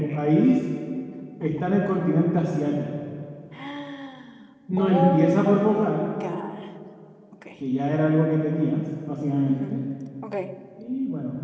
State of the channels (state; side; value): identical; both; correlation 1.00